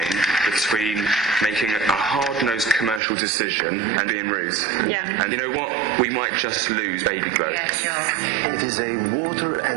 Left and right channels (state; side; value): drops out; left; at 3.0 s